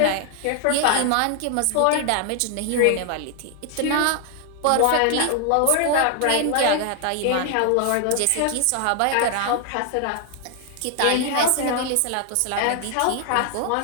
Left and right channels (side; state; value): both; different; correlation 0.00